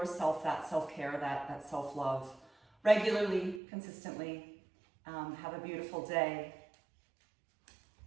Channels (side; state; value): left; drops out; at 3.6 s